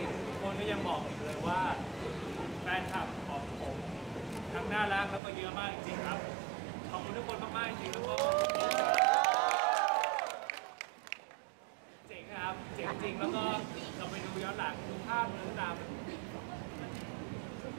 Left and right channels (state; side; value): drops out; left; at 5.2 s